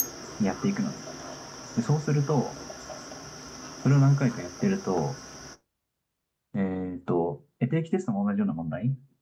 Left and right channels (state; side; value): identical; both; correlation 1.00